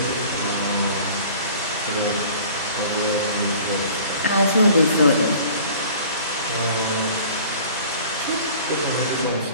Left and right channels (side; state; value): both; inverted; correlation -0.47